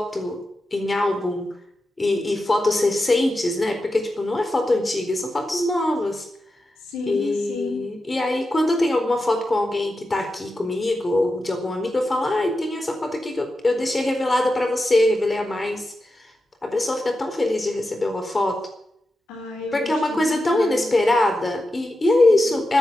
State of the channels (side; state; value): both; normal; correlation 0.90